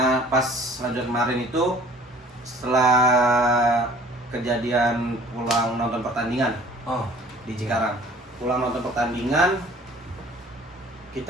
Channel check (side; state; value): both; normal; correlation 0.51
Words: pas lanjut kemarin itu setelah kejadian pulang nonton pertandingan Oh, di Cikarang. Pulang nonton pertandingan,